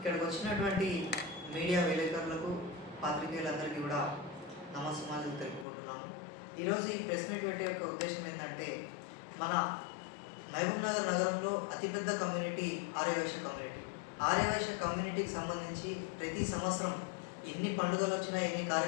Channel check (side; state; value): right; drops out; at 5.7 s